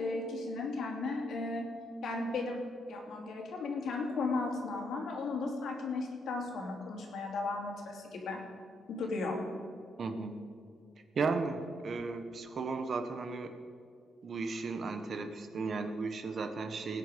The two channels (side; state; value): both; normal; correlation 0.75